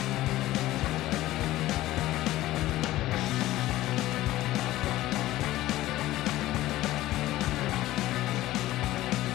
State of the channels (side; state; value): right; quieter; 16.0 dB